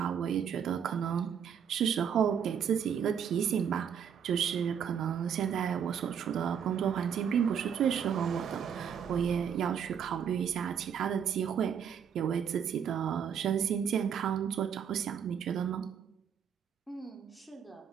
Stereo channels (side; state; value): left; quieter; 7.9 dB